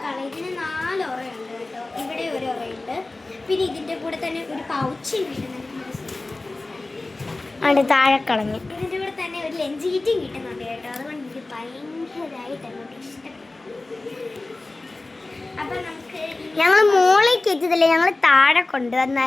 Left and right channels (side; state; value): right; quieter; 3.1 dB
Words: ഇതിന് 4 ഉറയുണ്ട് കേട്ടോ. ഇവിടെ ഒരു ഉറയുണ്ട്. പിന്നെ ഇതിൻ്റെ കൂടെ തന്നെ ഒരു പൗച്ച് കിട്ടുന്നുണ്ട്. താഴെ കളഞ്ഞു. ഇതിൻ്റെ കൂടെ തന്നെ ഒരു ലഞ്ച് കിറ്റും കിട്ടുന്നുണ്ട് കേട്ടോ. അതുകൊണ്ട് എനിക്ക് ഭയങ്കരമായിട്ട് അങ്ങോട്ട് ഇഷ്ടപ്പെട്ടു. അപ്പം നമുക്ക് ഞങ്ങൾ മോളിൽ കയറ്റിയതല്ലേ, ഞങ്ങൾ താഴെ